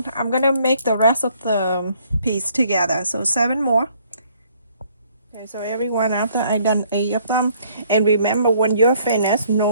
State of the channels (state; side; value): inverted; both; correlation -0.63